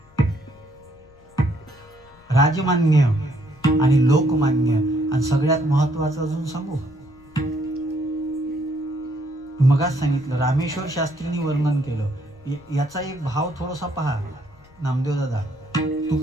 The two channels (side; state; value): left; noise; rumble, 28 dB below the sound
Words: राजमान्य आणि लोकमान्य. आणि सगळ्यात महत्वाचं अजून सांगू, मगाच सांगितलं रामेश्वर शास्त्रींनी वर्णन केलं. याचा एक भाव थोडासा पहा नामदेव दादा.